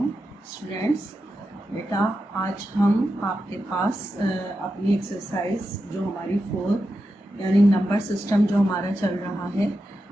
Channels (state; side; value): normal; both; correlation 0.89